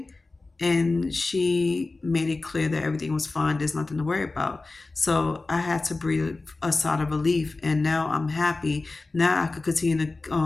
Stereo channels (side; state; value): right; quieter; 3.4 dB